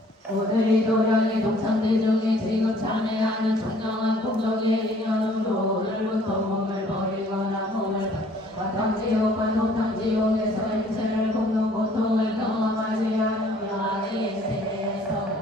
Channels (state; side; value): normal; both; correlation 0.57